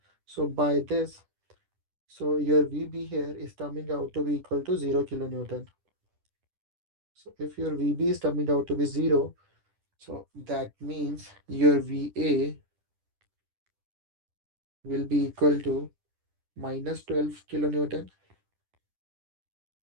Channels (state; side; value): late; left; 10 ms